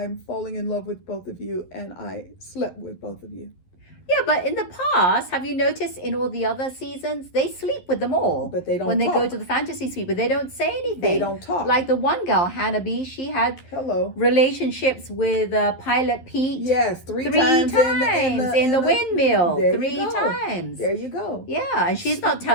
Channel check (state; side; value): late; right; 11 ms